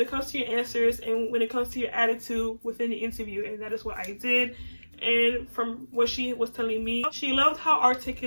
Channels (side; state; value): both; inverted; correlation -1.00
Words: it comes to your answers and when it comes to your attitude within the interview. And that is what I did. And from what she was telling me, she loved how